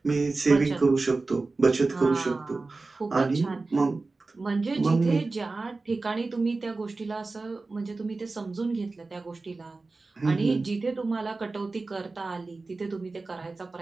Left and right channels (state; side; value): quieter; left; 3.6 dB